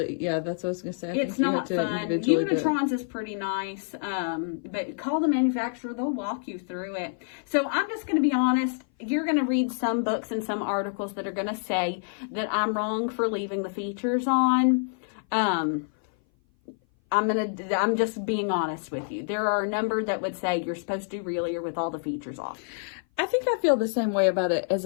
yeah, that's what I was going to say. It's not fun. Unitron's is pretty nice, but call the manufacturer. They'll walk you through it. So I'm just going to be honest. You're going to read some books and some articles that are going to say that I'm wrong for leaving the features on. I'm just being honest with you. There are a number that would say you're supposed to do Relier with all the features off. I think I feel the same way about it as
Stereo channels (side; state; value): right; silent; 57 dB below the other